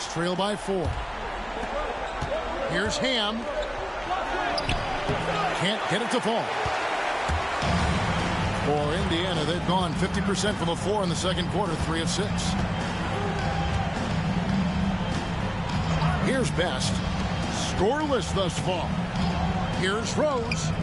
trail by 4. Here's Ham. Can't get it to fall. For Indiana, they've gone 50% from the floor in the second quarter, 3 of 6. Here's Best. Scoreless thus far. Here's Rose.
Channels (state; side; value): identical; both; correlation 1.00